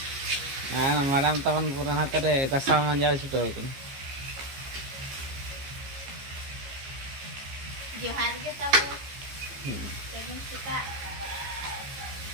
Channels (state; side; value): late; left; 15 ms